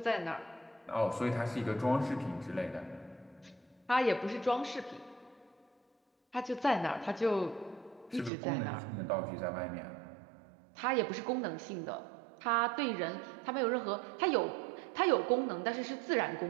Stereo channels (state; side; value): drops out; left; at 8.3 s